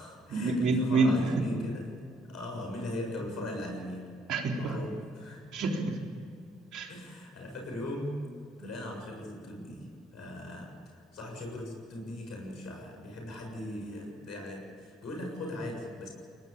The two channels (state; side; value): normal; both; correlation 0.67